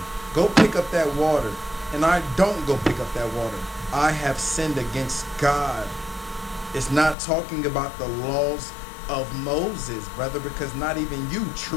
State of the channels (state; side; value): drops out; right; at 7.2 s